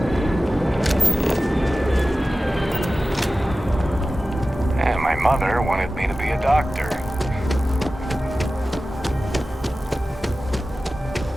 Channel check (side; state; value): both; normal; correlation 0.95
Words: And my mother wanted me to be a doctor.